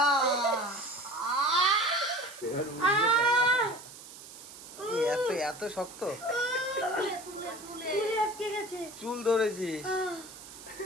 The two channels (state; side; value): noise; right; hiss, 16 dB below the sound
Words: এত এত শক্ত চুলে আটকে গেছে। চুল ধরেছিস?